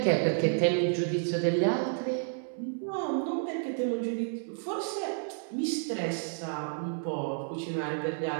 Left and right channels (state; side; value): silent; left; 57 dB below the other